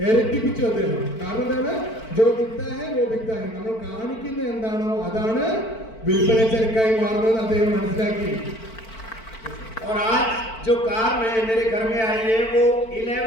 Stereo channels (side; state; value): right; late; 4.5 ms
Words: ഇരട്ടിപ്പിച്ചു അദ്ദേഹം. കാരണം എന്താണ്? ജോ ദിക്താ ഹൈ വോ ബിക്താ ഹൈ. നമ്മൾ കാണിക്കുന്ന എന്താണോ അതാണ് വിൽപ്പന ചരക്കായി മാറുന്നത് അദ്ദേഹം മനസ്സിലാക്കി. और आज जो कार मेरे घर में आई है वो